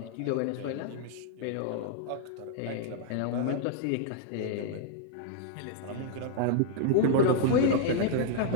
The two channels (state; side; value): different; both; correlation -0.01